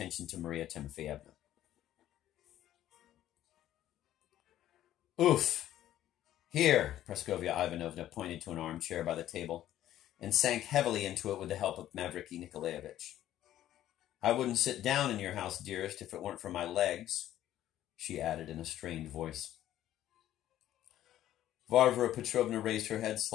to Maria Timofeyevna. "Oof! Here," Praskovia Ivanovna pointed to an armchair by the table, and sank heavily into it with the help of Mavriky Nikolaevich. "I wouldn't sit down in your house, dearest, if it weren't for my legs," she added in a strained voice. Varvara Petrovna raised her head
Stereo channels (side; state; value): right; quieter; 12.7 dB